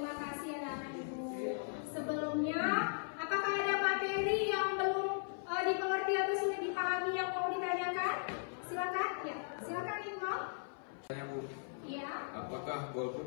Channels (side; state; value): right; silent; 52 dB below the other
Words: kasih anak-anak ibu. Sebelumnya, apakah ada materi yang belum dimengerti atau sudah dipahami yang mau ditanyakan? Silakan. Ya, silakan Ibu. Tanya Bu, Iya. apakah